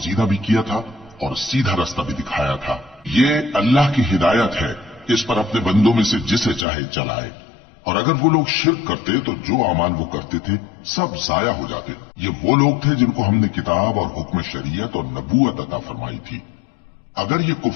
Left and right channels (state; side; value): drops out; right; at 6.7 s